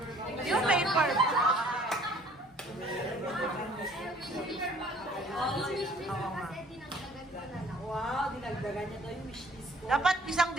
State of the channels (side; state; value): both; normal; correlation 0.55